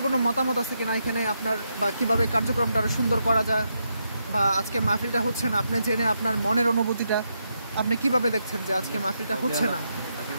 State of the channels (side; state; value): both; inverted; correlation -0.82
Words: কোনো মতামত আছে কিনা এখানে আপনার, বা কিভাবে কার্যক্রমটা আরো সুন্দর করা যায়, বা আজকে মাহফিলটা হচ্ছে না, আপনি জেনে আপনার মনের অনুভূতিটা আপনি কিভাবে দেখছেন যে আজকে মাহফিলটা হচ্ছে না?